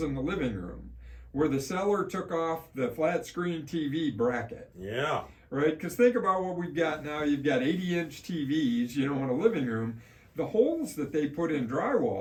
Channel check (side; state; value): both; identical; correlation 1.00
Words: in the living room where the seller took off the flat screen TV bracket. Yeah. Right? Because think about what we've got now. You've got 80-inch TVs, in a living room. The holes that they put in